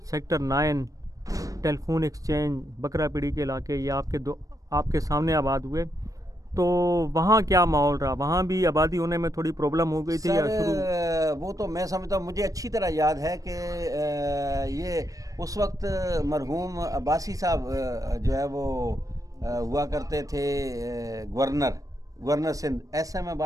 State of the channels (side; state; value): left; late; 0.16 ms